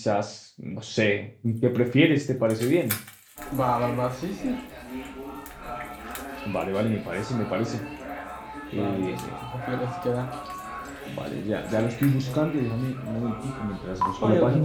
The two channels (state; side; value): identical; both; correlation 1.00